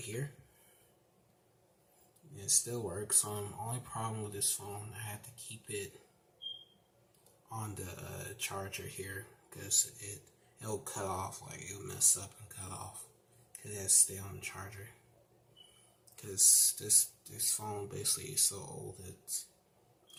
And it still works. Only problem with this phone, I had to keep it on the charger here, because it'll cut off, like it'll mess up and cut off, because it has to stay on the charger. Because this phone basically is so old.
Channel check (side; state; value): both; identical; correlation 1.00